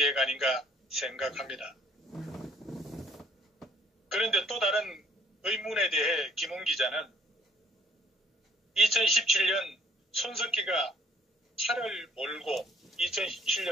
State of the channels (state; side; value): normal; both; correlation 0.61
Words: 아닌가 생각합니다. 그런데 또 다른 의문에 대해 김웅 기자는 2017년 손석희가 차를 몰고